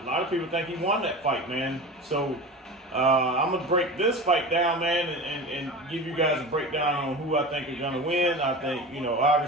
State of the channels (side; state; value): both; normal; correlation 0.31